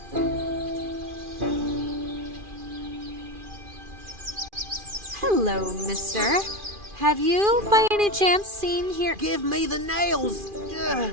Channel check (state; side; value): late; left; 2.4 ms